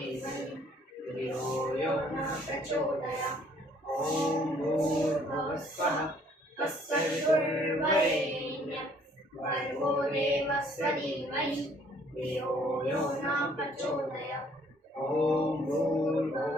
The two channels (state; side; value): normal; both; correlation 0.61